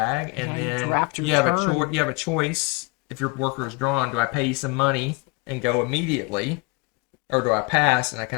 and then you have a choice. If your worker is drawn, do I pay you some money and go immediately, or do I pass and I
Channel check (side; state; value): right; quieter; 28.3 dB